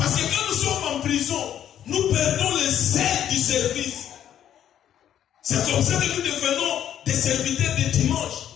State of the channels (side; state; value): right; quieter; 10.4 dB